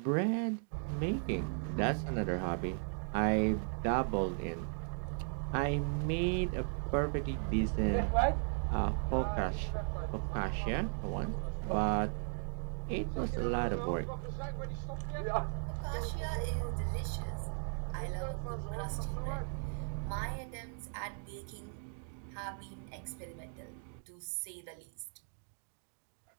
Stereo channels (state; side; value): silent; left; 53 dB below the other